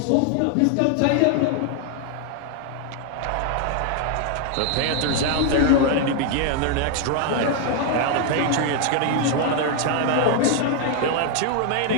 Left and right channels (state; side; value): different; both; correlation 0.00